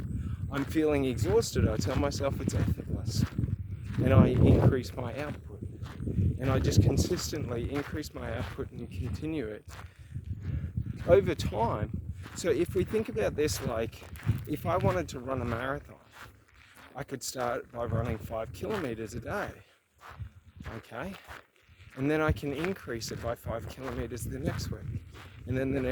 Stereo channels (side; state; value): both; identical; correlation 1.00